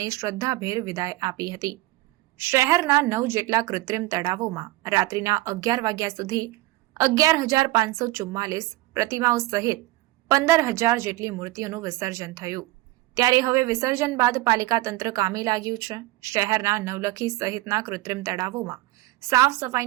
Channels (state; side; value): quieter; left; 19.0 dB